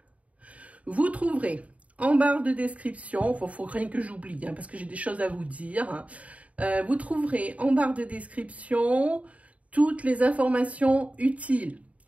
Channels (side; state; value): left; late; 0.067 ms